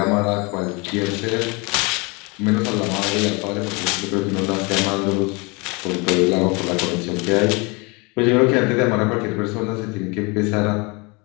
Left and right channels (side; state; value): right; quieter; 28.4 dB